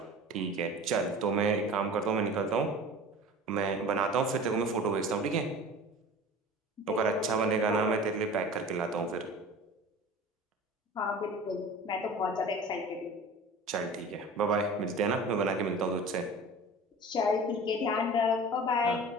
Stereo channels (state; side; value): normal; both; correlation 0.39